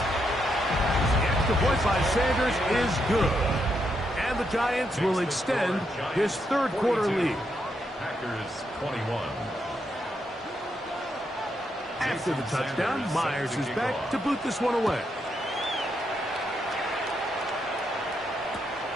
The extra point by Sanders is good. And the Giants will extend his third quarter lead. Packers 21. After the touchdown, Myers is back to boot this one away.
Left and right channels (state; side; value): normal; both; correlation 0.80